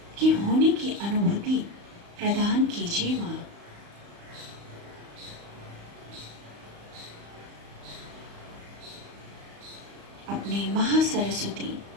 की होने की अनुभूति प्रदान कीजिए माँ। अपने महासरस्वती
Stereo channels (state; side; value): late; left; 35 ms